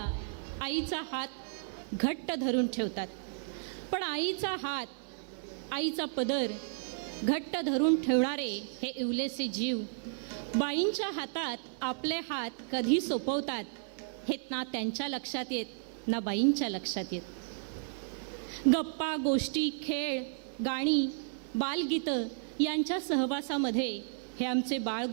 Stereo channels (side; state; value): left; silent; 56 dB below the other